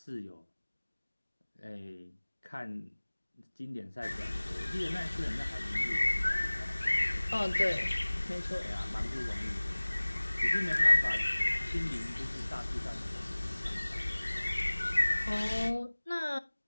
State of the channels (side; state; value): both; inverted; correlation -1.00